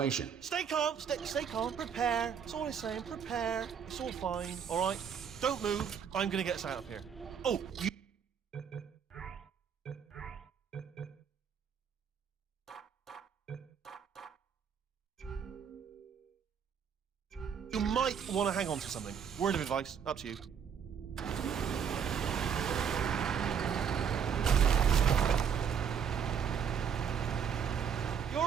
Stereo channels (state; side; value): quieter; left; 7.4 dB